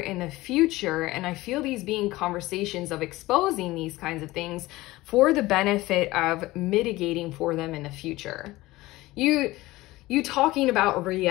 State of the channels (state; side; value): quieter; right; 18.8 dB